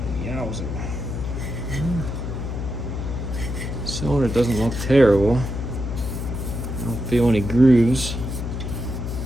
Yowzer. Cylinder doesn't look terrible. I don't feel any grooves.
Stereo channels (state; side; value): noise; left; hum, 4 dB below the sound